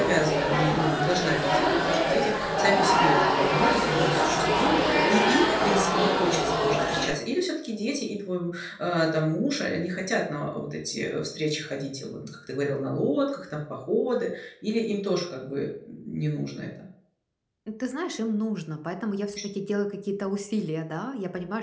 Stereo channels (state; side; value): identical; both; correlation 1.00